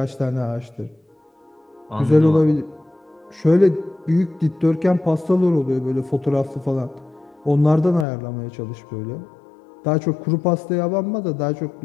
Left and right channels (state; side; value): drops out; right; at 8.1 s